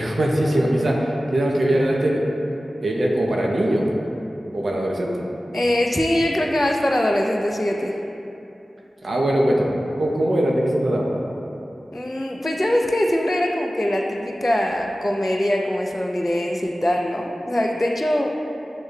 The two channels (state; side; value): normal; both; correlation 0.95